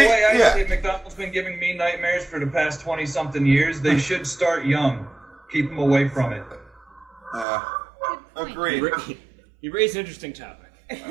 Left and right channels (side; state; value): left; drops out; at 7.5 s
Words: I see it, McDonald's been giving me nightmares for the past 20-something years. They should start young. Keep them away from it. Agreed. You raised an interesting topic.